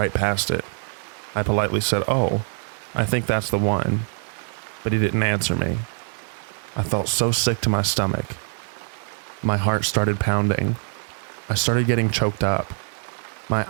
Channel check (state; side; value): silent; left; 58 dB below the other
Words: past it. I politely said, "Oh, I think that's the one." But he didn't answer me. I felt so sick to my stomach. My heart started pounding. I started getting choked up. My